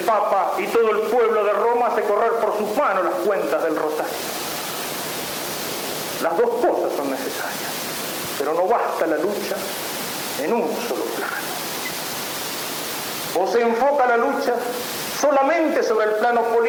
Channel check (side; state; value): both; identical; correlation 1.00